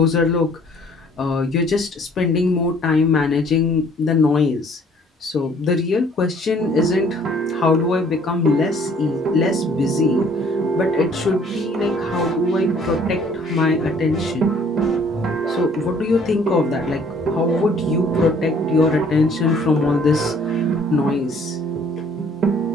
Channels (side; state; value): both; normal; correlation 0.58